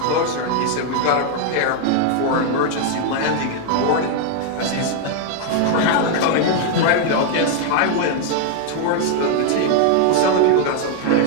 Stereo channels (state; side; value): different; both; correlation 0.00